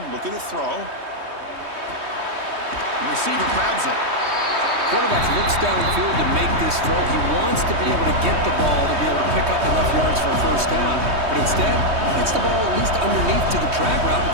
looking to throw. The receiver grabs it. Quarterback looks downfield to make this throw. He wants to be able to get the ball to be able to pick up enough yards for a 1st down. But instead, he gets the ball at least underneath to the drag route and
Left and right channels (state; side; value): late; left; 3.2 ms